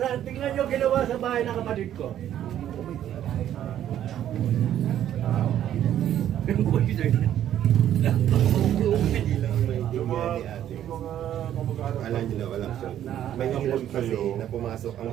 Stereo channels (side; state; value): left; quieter; 11.1 dB